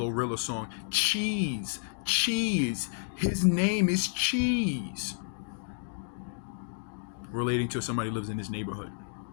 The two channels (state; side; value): silent; right; digital silence